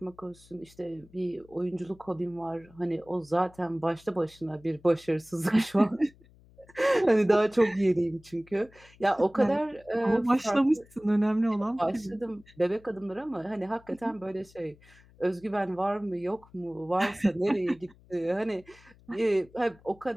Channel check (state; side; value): noise; left; hum, 26 dB below the sound